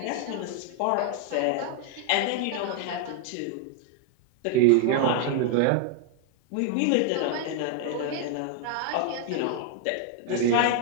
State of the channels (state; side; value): different; both; correlation 0.00